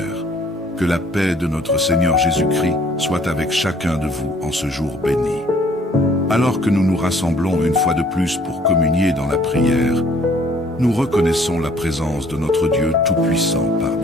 que la paix de notre Seigneur Jésus-Christ soit avec chacun de vous en ce jour béni. Alors que nous nous rassemblons une fois de plus pour communier dans la prière, nous reconnaissons la présence de notre Dieu Tout-Puissant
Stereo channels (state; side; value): normal; both; correlation 0.59